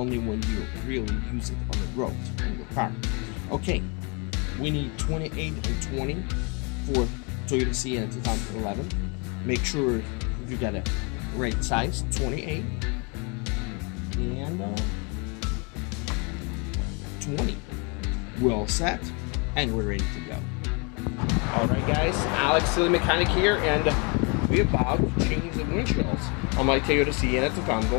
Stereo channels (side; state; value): right; quieter; 32.9 dB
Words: when you really use it on the road on your car. Okay, we need 28 and 20 for Toyota Sienna 2011. Make sure you got a right size, 28 and 20. We're all set and we're ready to go. Alright guys, Alex, the mechanic here, and we're about to change the windshields on my Toyota Sienna